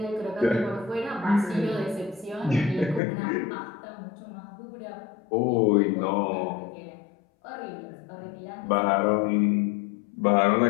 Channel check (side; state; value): right; drops out; at 3.0 s